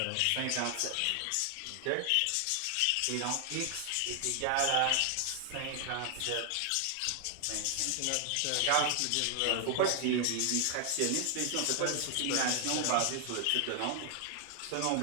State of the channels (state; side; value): different; both; correlation 0.00